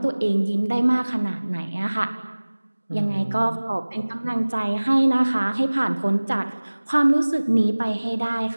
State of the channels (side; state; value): both; inverted; correlation -1.00